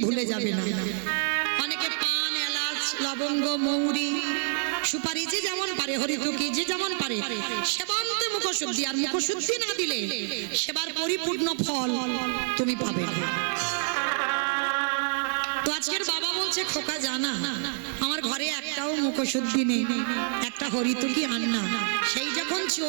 ভুলে যাবে না। অনেকে পান, এলাচ, লবঙ্গ, মৌরি, সুপারি যে যেমন পারে, হরিতুকি যে যেমন পারে সেবা আনতে মুখশুদ্ধি, আর মুখশুদ্ধি না দিলে সেবার পরিপূর্ণ ফল তুমি পাবে না। তো আজকের বাবা বলছে খোকা জানা, আমার ঘরে একটাও মুখশুদ্ধি নেই, একটা হরিতুকি আন না। সেই যখন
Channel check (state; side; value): silent; left; digital silence